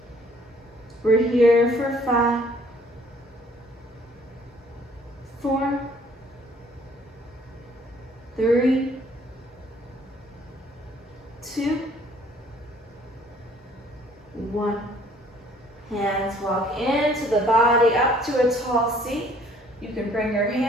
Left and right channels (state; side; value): normal; both; correlation 0.59